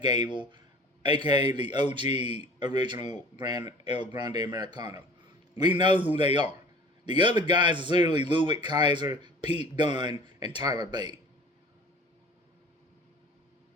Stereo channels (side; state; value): both; normal; correlation 0.44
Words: Gable, aka the OG original El Grande Americano. We know who they are. The other guys is literally Ludwig Kaiser, Pete Dunne, and Tyler Bate.